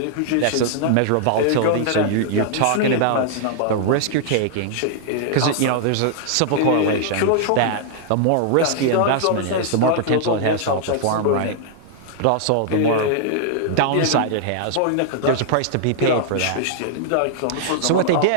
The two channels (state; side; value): different; both; correlation -0.01